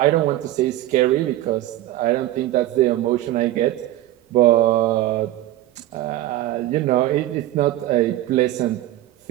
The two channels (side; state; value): left; quieter; 14.9 dB